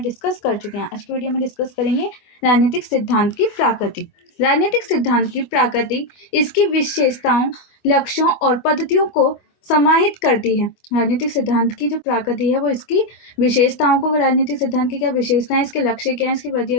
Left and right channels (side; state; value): right; late; 25 ms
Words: डिस्कस कर चुके हैं। आज की वीडियो में डिस्कस करेंगे राजनीतिक सिद्धांत की प्रकृति। राजनीतिक सिद्धांत की प्रकृति इसकी विशेषताओं, लक्ष्यों और पद्धतियों को समाहित करती है। राजनीतिक सिद्धांत की जो प्रकृति है वो इसकी विशेषताओं को, राजनीतिक सिद्धांत की क्या विशेषताएं, इसके लक्ष्य क्या है, इसकी